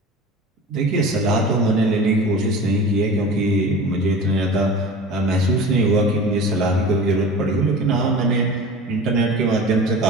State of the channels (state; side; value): normal; both; correlation 0.36